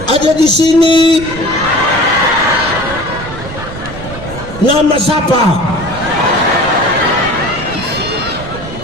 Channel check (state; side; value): noise; right; rumble, 12 dB below the sound